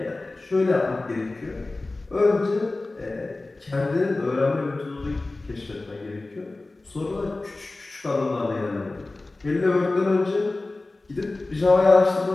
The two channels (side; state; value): right; quieter; 3.1 dB